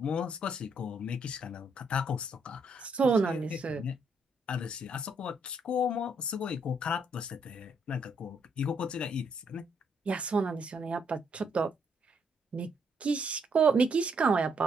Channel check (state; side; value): normal; both; correlation 0.72